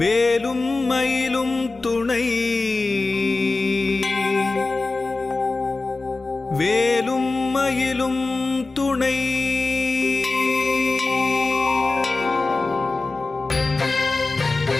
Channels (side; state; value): right; quieter; 3.5 dB